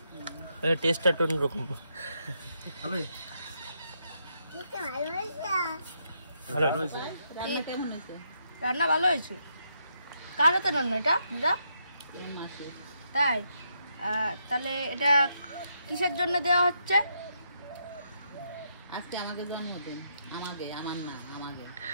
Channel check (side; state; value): both; inverted; correlation -0.78